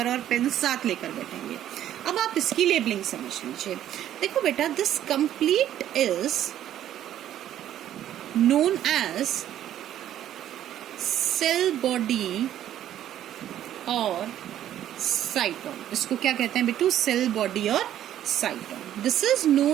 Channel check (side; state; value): left; quieter; 11.6 dB